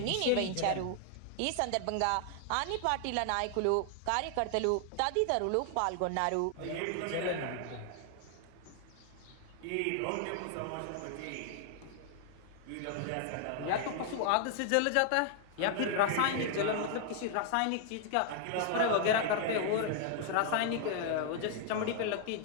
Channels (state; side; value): different; both; correlation 0.00